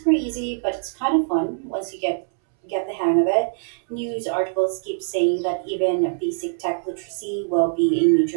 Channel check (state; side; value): silent; left; 63 dB below the other